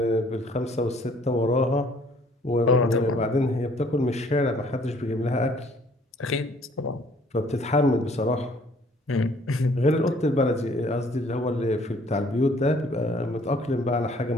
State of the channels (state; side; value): normal; both; correlation 0.59